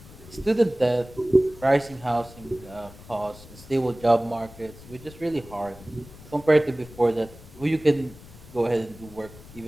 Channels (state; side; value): noise; left; rumble, 19 dB below the sound